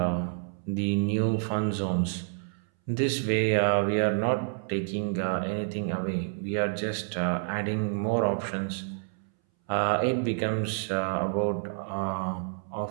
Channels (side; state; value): left; silent; 59 dB below the other